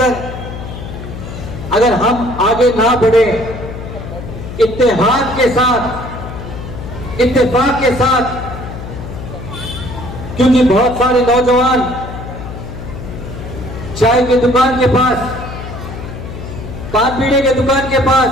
अगर हम आगे ना बढ़े इत्तेहाद के साथ, इत्तेफाक के साथ, क्योंकि बहुत सारे नौजवान चाय की दुकान के पास, पान पीने के दुकान के पास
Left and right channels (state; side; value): noise; left; hum, 10 dB below the sound